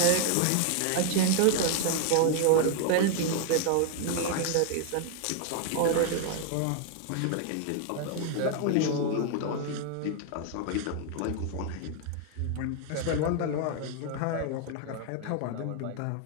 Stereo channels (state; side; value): different; both; correlation 0.00